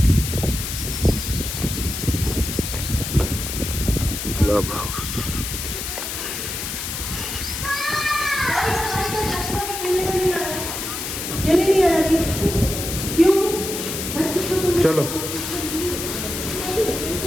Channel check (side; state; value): left; noise; hiss, 5 dB below the sound